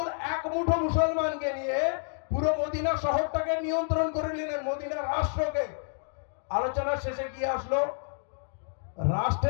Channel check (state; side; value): silent; right; digital silence